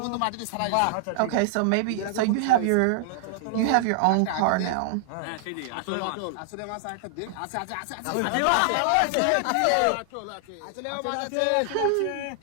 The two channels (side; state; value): both; different; correlation -0.01